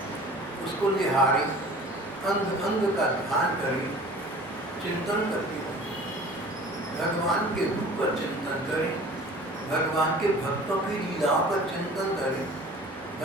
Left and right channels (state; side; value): normal; both; correlation 0.44